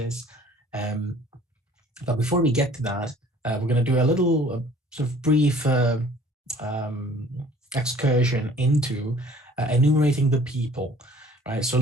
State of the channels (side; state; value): both; normal; correlation 0.52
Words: But before we get to that, we're going to do a little brief excursion into enumerating the people, right? So